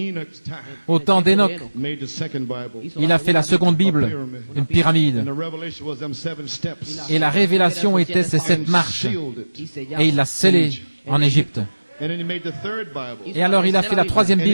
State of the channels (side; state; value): both; inverted; correlation -1.00